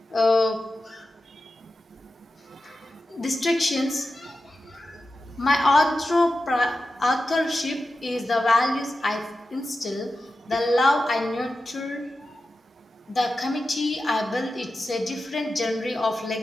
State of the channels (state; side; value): normal; both; correlation 0.92